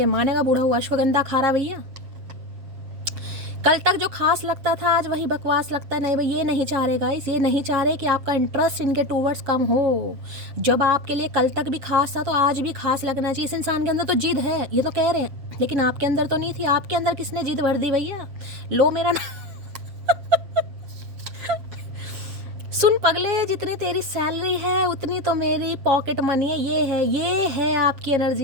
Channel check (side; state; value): left; late; 7.5 ms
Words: मानेगा। बूढ़ा हुआ अश्वगंधा खा रहा भैया। कल तक जो खास लगता था आज वही बकवास लगता है। नहीं भाई, ये नहीं चाह रहे गाइस, ये नहीं चाह रहे कि आपका इंटरेस्ट इनके टूवर्ड्स कम हो। जब आपके लिए कल तक भी खास था तो आज भी खास लगना चाहिए। इस इंसान के अंदर तो जिद है, ये तो कह रहे हैं, लेकिन आपके अंदर तो नहीं थी। आपके अंदर किसने जिद भर दी भैया? लो मेरा सुन पगले, जितनी तेरी सैलरी है उतनी तो मेरी पॉकेट मनी है। ये है आपकी